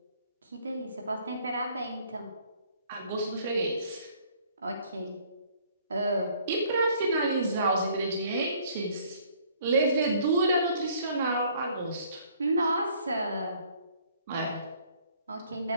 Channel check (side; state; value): both; inverted; correlation -0.59